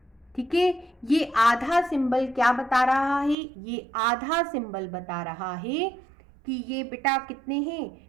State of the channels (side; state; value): left; drops out; at 3.4 s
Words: ठीक है। ये आधा सिंबल क्या बता रहा है, ये आधा सिंबल बता रहा है कि ये बेटा कितने